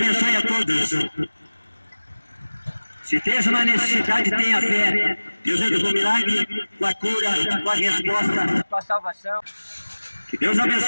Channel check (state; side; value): inverted; both; correlation -1.00